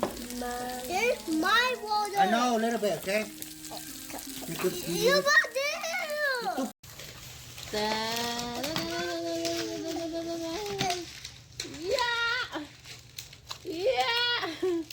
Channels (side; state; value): both; identical; correlation 1.00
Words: It's my water. I know, a little bit, okay? You could You got it.